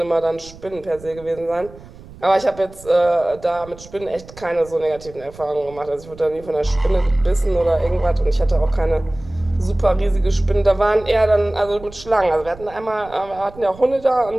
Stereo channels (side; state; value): right; noise; rumble, 19 dB below the sound